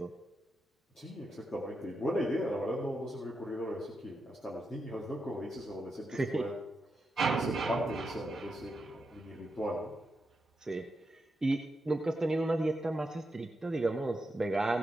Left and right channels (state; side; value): normal; both; correlation 0.86